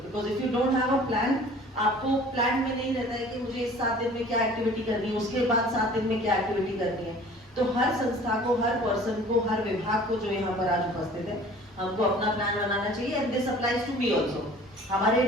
Because if you don't have a plan, आपको प्लान में नहीं रहता है कि मुझे इस 7 दिन में क्या एक्टिविटी करनी है, उसके बाद 7 दिन में क्या एक्टिविटी करनी है। तो हर संस्था को, हर पर्सन को, हर विभाग को जो यहाँ पर आज उपस्थित है, हमको अपना प्लान बनाना चाहिए। And this applies to me also. हमारे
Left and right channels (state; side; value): normal; both; correlation 0.48